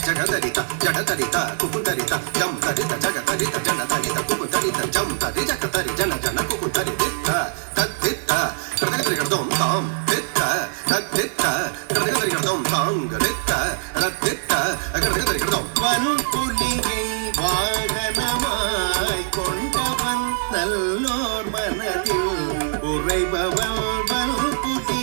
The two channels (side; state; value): left; silent; digital silence